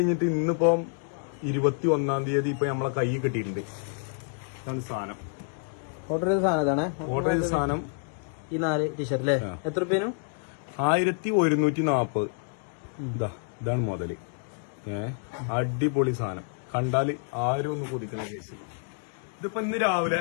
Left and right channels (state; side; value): silent; right; 59 dB below the other